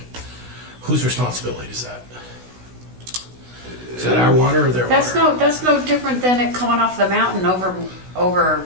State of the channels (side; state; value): left; late; 16 ms